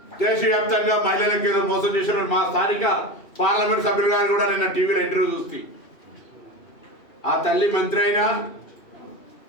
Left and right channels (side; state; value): right; late; 2.7 ms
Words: దేశవ్యాప్తంగా మహిళలకు ఏదో మోసం చేసిన మా స్థానిక పార్లమెంట్ సభ్యులు గారు కూడా నిన్న టీవీలో ఇంటర్వ్యూ చూస్తే ఆ తల్లి మంత్రి అయినా